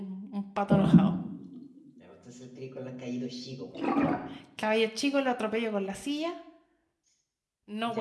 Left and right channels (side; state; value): both; identical; correlation 1.00